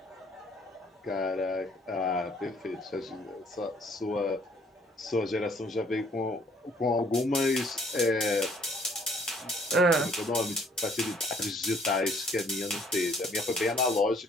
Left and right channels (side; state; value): both; normal; correlation 0.61